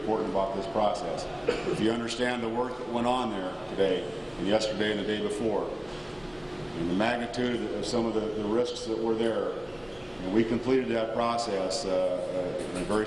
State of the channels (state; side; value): noise; right; hum, 29 dB below the sound